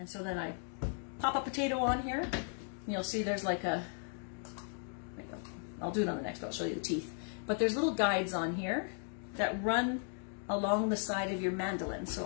so then I pop a potato on here, and you'll see there's like a, I'll do it on the next, but I'll show you the teeth. But there's little guides on here that run along the side of your mandolin.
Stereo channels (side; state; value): right; silent; 54 dB below the other